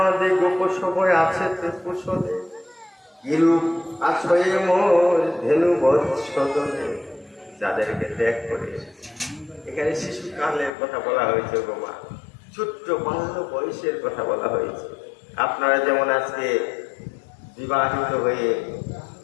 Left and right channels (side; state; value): right; drops out; at 10.8 s